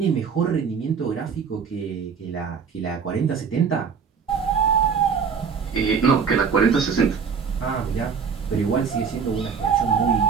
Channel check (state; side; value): quieter; left; 6.1 dB